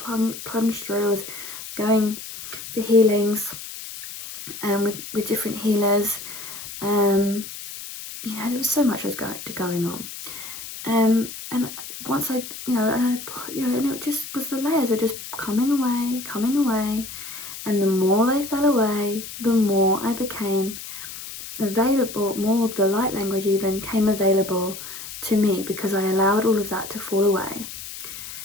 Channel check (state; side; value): noise; left; hiss, 11 dB below the sound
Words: plunge through. I was going for healings with different healers. You know, there was so much was going on, and once I, you know, and it just was, the layers were just coming away, and the more they fell away, the more I became available, more of the light language even came available to me, because I allowed all of that to fall away,